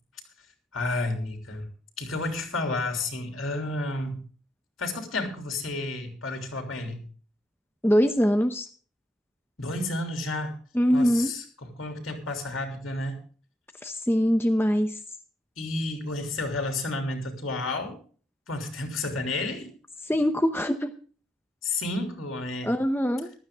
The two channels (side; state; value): both; normal; correlation 0.80